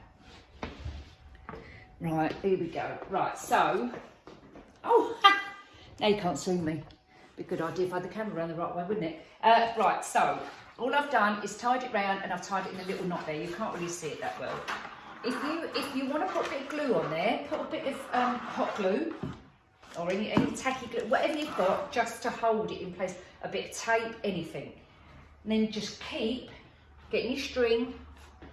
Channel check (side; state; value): both; identical; correlation 1.00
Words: Right. Here we go. Right. So. Oh. Now you can't see me. Be a good idea if I had the camera around the right way, wouldn't it? Right. So. All I've done is tied it round and I've tied it in a little knot there. You can't really see it that well. If you want to put a bit of glue on there, put a bit of hot glue or any tacky glue, whatever you've got, just to hold it in place. A bit of tape, anything. And then just keep getting your string